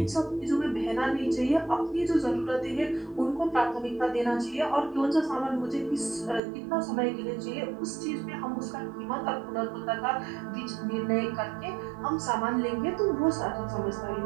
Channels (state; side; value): drops out; left; at 6.4 s